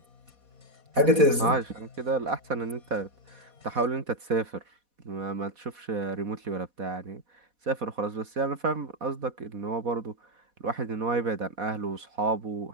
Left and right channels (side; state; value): left; late; 4.1 ms